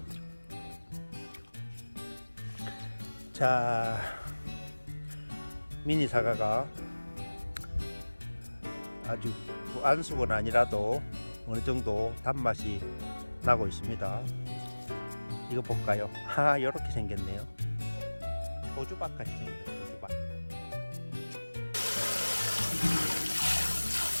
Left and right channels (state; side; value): inverted; both; correlation -1.00